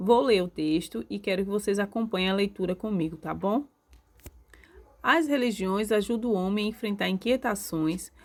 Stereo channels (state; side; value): identical; both; correlation 1.00